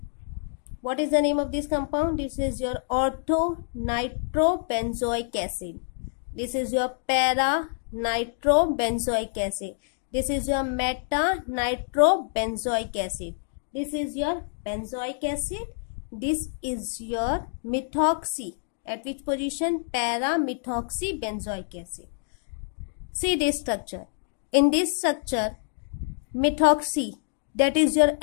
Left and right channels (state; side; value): silent; right; digital silence